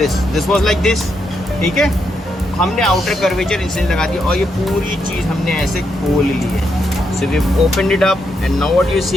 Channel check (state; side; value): normal; both; correlation 0.80